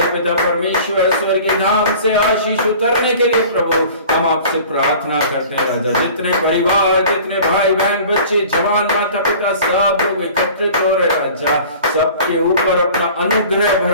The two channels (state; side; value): inverted; both; correlation -0.44